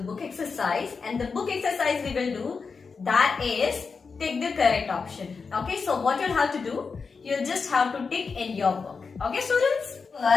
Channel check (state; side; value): quieter; right; 5.0 dB